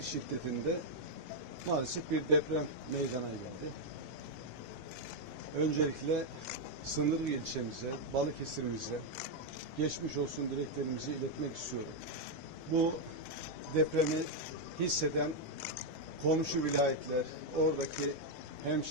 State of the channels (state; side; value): late; right; 3.4 ms